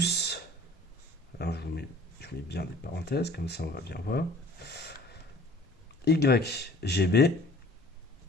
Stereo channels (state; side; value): normal; both; correlation 0.50